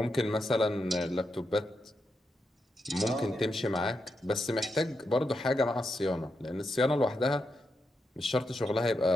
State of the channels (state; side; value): normal; both; correlation 0.85